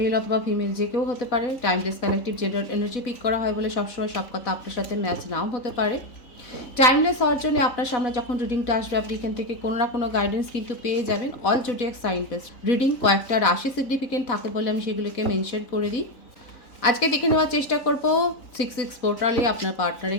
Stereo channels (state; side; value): late; right; 4.1 ms